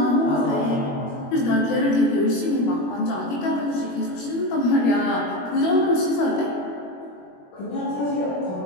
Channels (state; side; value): late; right; 21 ms